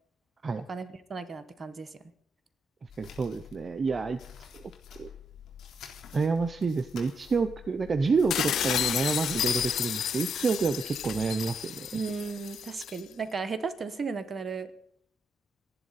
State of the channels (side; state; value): both; normal; correlation 0.78